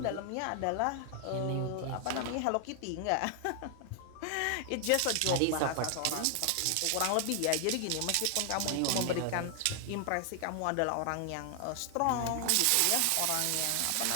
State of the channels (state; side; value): different; both; correlation 0.00